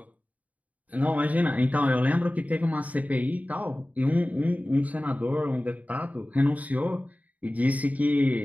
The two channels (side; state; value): left; late; 0.073 ms